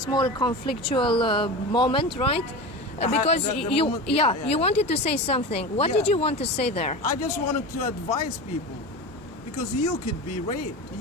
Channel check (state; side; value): normal; both; correlation 0.27